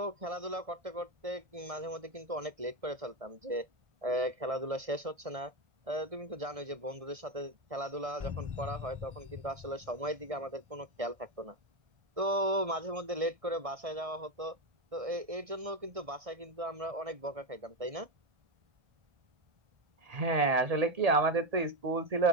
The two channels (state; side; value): late; left; 1.6 ms